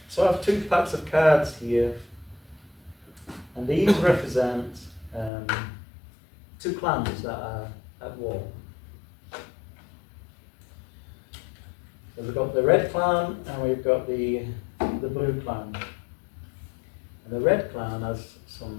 So I have 2 packs of cards here, and these represent 2 clans that are at war. So we've got the red clan and we've got the blue clan. And the red clan has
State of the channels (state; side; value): drops out; right; at 5.3 s